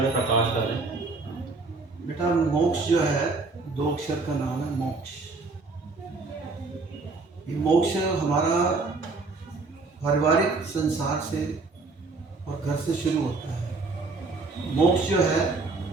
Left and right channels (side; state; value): left; quieter; 3.8 dB